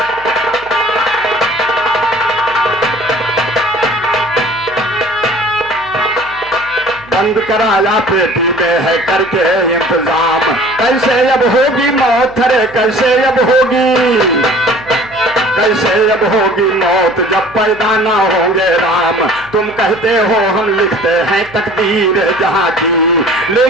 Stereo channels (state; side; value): noise; right; hum, 24 dB below the sound